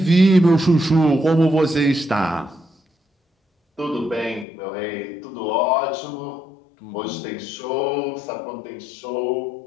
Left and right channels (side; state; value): right; drops out; at 4.5 s